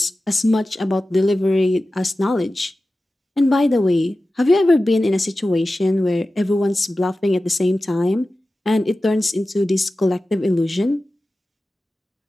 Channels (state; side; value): normal; both; correlation 0.95